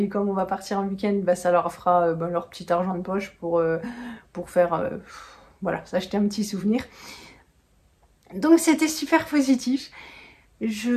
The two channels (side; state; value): both; identical; correlation 1.00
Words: comme on va partir en week-end, ça leur fera leur petit argent de poche pour faire, voilà, s'acheter un petit souvenir. Donc c'était super positif.